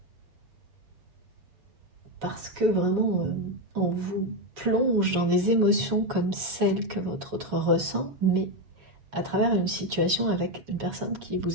parce que vraiment on vous plonge dans des émotions comme celles que votre autre ressent, mais à travers une situation avec une personne qui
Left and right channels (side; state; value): left; late; 7.3 ms